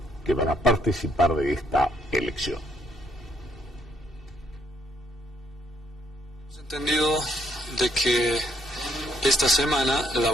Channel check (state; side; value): normal; both; correlation 0.69